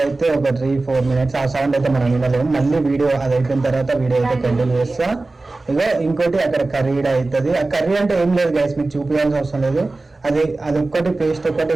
ఒక 3-4 మినిట్స్. ఆ సౌండ్ అయితే మనం వినలేము. మళ్ళీ వీడియో అది అయిపోయిన తర్వాత వీడియో అయితే కంటిన్యూ చేస్తా. ఇగో ఇంకోటి అక్కడ కర్రీ అవుతుంది. ఆ కర్రీ అంటే ఏం లేదు గైస్, మీకు చూపించాల్సిన అవసరం లేదు. అది ఒక్కటి పేస్ట్ ఒక్కటి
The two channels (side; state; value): left; quieter; 3.2 dB